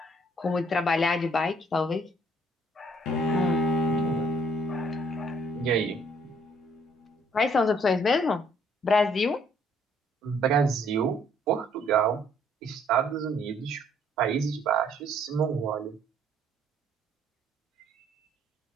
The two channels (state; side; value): normal; both; correlation 0.64